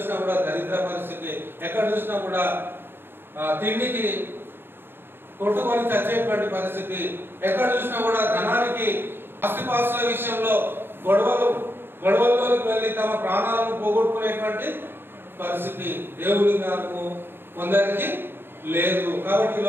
కూడా దరిద్ర పరిస్థితి, ఎక్కడ చూసినా కూడా తిండికి కొట్టుకొని చచ్చేటువంటి పరిస్థితి, ఎక్కడ చూసినా కూడా ధనానికి, ఆస్తిపాస్తుల విషయంలో గొడవల్లోకి వెళ్ళి తమ ప్రాణాలను పోగొట్టుకునేటువంటి పరిస్థితి. దేవుని జ్ఞానము కొందరికి లేదు. కాబట్టి ఈ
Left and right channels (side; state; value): left; late; 0.10 ms